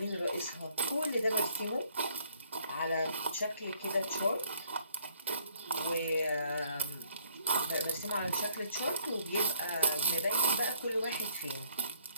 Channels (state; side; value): inverted; both; correlation -0.63